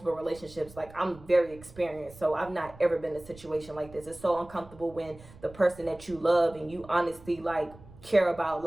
relationships. Like, I'm very experienced. So I've not ever been in a situation like this. It's so uncomfortable when the person that you love and you honestly like care about,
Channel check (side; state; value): right; noise; rumble, 20 dB below the sound